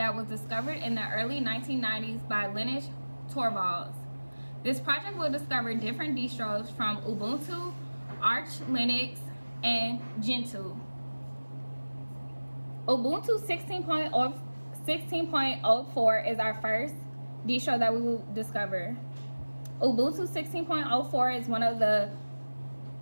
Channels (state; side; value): inverted; both; correlation -1.00